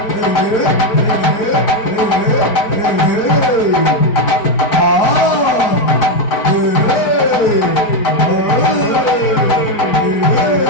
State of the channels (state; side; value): late; right; 4.6 ms